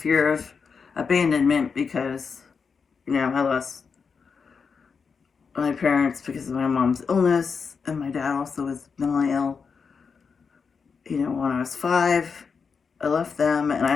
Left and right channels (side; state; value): right; quieter; 5.6 dB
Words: of abandonment, because, you know, I lost my parents because of my mom's illness, and my dad also was mentally ill. You know, when I was 5, I left them, and I